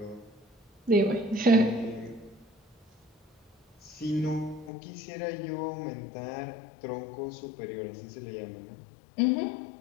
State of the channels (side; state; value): right; drops out; at 4.7 s